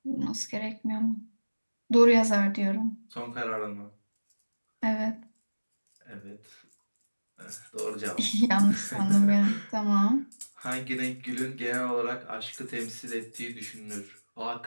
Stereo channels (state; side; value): inverted; both; correlation -1.00